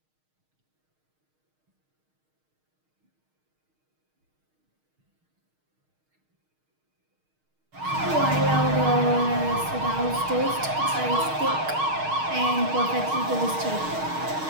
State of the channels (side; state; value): left; late; 6.4 ms